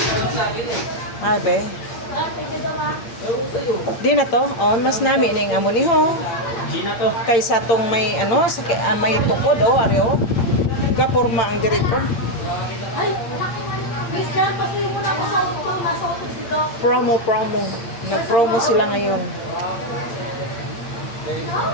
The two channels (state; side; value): late; right; 8.6 ms